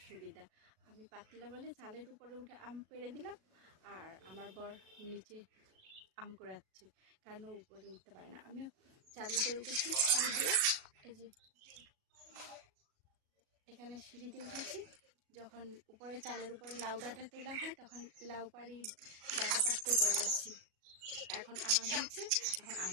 সুবিধা। আমি পাতলা বলে চালের উপরে উঠে আম পেড়ে দিলাম, আর আমার বর নিচে আম কুড়াচ্ছে, কারণ ও উপরে উঠতে পারে না। আমি চালের উপরে উঠেছি সিঁড়ি দিয়ে, এই যে এখানে সিঁড়ি দিয়ে উঠেছি। যখন উপরে চালের উপরে লাউ ডাঁটা তোলা হয় তখন লাউ পাড়ি ডাঁটা পাড়তে উপরে আসছি। এখন আম হয়েছে, এখন আম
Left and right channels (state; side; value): late; left; 37 ms